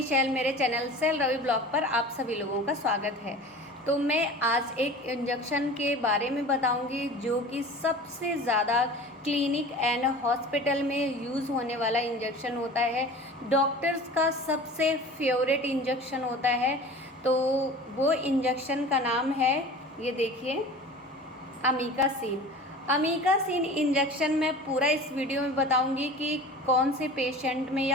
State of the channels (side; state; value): both; normal; correlation 0.39